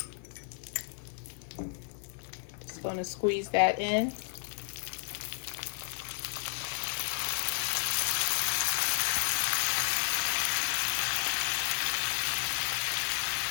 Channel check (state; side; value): silent; right; 56 dB below the other